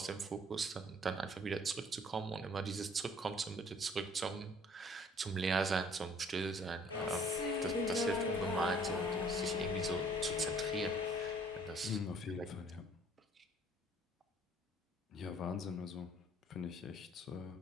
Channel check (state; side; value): normal; both; correlation 0.57